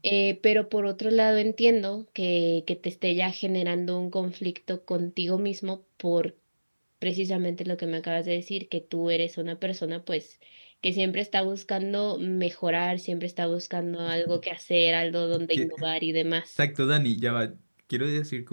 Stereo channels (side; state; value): both; inverted; correlation -1.00